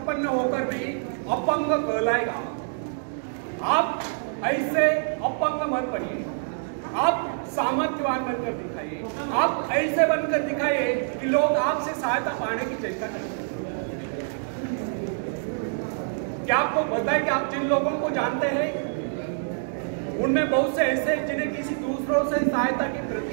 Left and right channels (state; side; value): silent; left; digital silence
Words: होकर भी अपंग कहलाएगा। आप ऐसे अपंग मत बनिए, आप सामर्थ्यवान बनकर दिखाइए। आप ऐसे बनकर दिखाइए कि लोग आपसे सहायता पाने की चेष्टा करें। क्या आपको पता है कि आप जिन लोगों को जानते हैं उनमें बहुत से ऐसे हैं जिन्हें किसी दूसरों से सहायता की